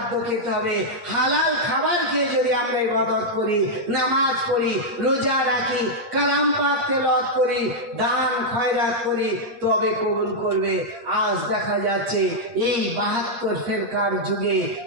খেতে হবে। হালাল খাবার খেয়ে যদি আমরা ইবাদত করি, নামাজ পড়ি, রোজা রাখি, কালাম পাক তেলাওয়াত করি, দান খয়রাত করি, তবে কবুল করবে। আজ দেখা যাচ্ছে এই 72 ফেরকার যুগে,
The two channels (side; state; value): left; late; 8.7 ms